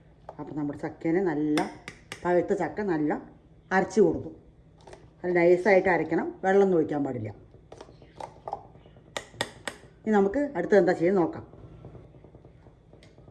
അപ്പം നമ്മുടെ ചക്കേനെ നല്ല പഴുത്ത ചക്ക നല്ല അരച്ച് കൊടുത്തു. അത് നൈസായിട്ട് അരയ്ക്കണം, വെള്ളം ഒഴിക്കാൻ പാടില്ല. ഇനി നമുക്ക് അടുത്തത് എന്താ ചെയ്യുന്നത് നോക്കാം.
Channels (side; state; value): both; identical; correlation 1.00